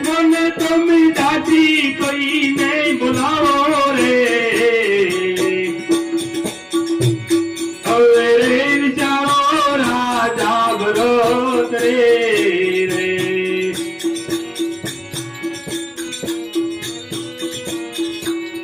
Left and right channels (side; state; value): both; identical; correlation 1.00